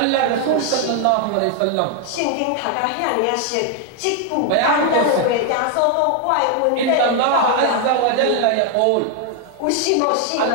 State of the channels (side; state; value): both; different; correlation 0.00